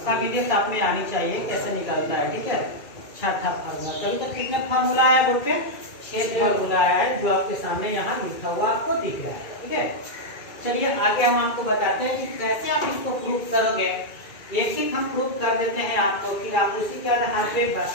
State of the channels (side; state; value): right; late; 2.4 ms